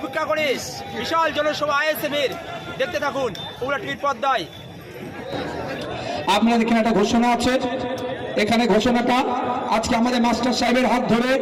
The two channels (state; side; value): identical; both; correlation 1.00